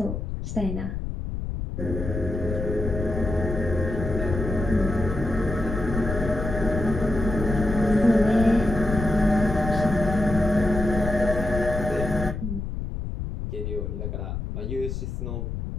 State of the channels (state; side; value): noise; left; rumble, 5 dB below the sound